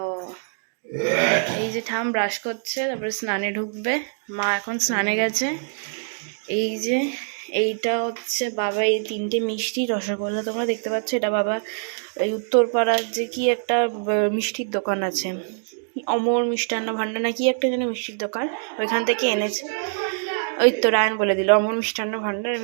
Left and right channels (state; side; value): silent; left; digital silence